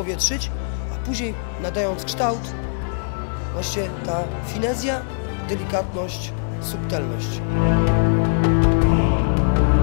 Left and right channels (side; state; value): right; silent; digital silence